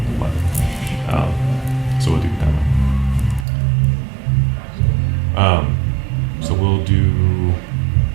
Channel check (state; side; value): drops out; left; at 3.5 s